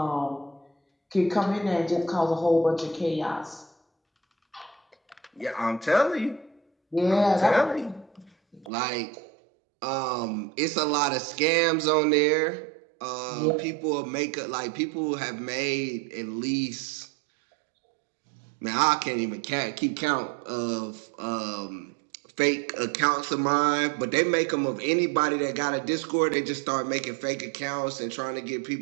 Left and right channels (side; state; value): left; drops out; at 8.7 s